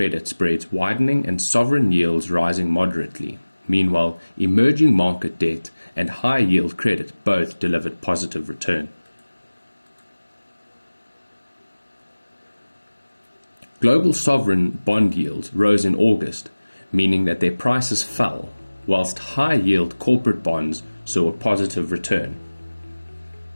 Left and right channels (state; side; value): inverted; both; correlation -1.00